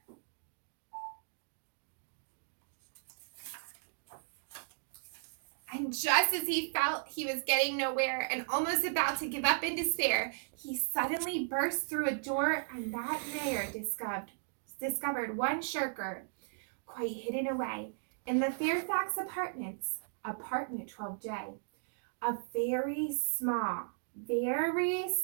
And just as he felt he was getting nowhere and almost about to give up in despair, he suddenly burst through a door, and that mayor discovered one shirker, quite hidden away, in the Fairfax Apartments, apartment 12J. A very small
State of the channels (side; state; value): left; silent; digital silence